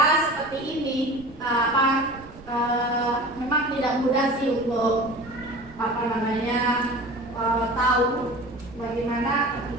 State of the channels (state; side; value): noise; right; rumble, 20 dB below the sound